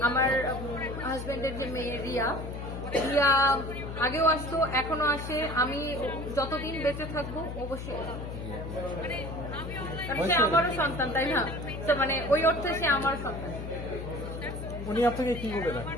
আমার হাজবেন্ডের যে মেয়ে রিয়া আগেও আসতো, এখনো আসে। আমি যতদিন বেঁচে থাকবো অবশ্যই, সে আমারও সন্তান, তাই না? তো মানে ওই অর্থে সে আমার সন্তান। উনি আপনাকে কি বলে রাখেন?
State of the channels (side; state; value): left; noise; hum, 8 dB below the sound